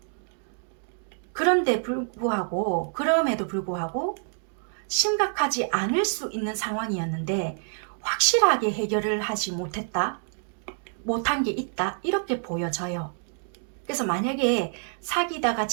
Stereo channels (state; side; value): silent; left; 60 dB below the other